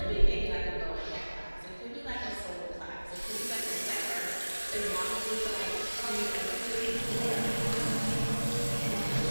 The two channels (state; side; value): inverted; both; correlation -1.00